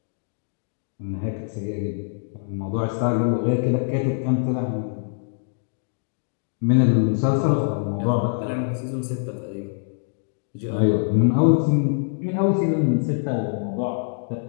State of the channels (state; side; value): silent; right; digital silence